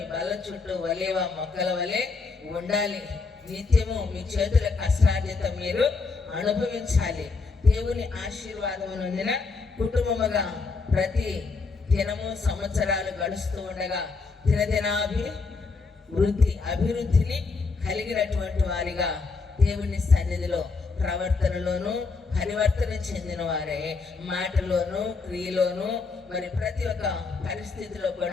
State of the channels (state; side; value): quieter; right; 4.4 dB